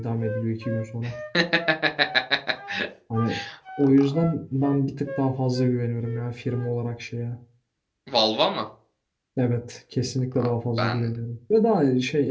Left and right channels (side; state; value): both; identical; correlation 1.00